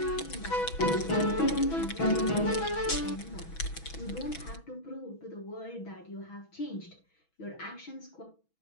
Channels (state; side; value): late; right; 6.1 ms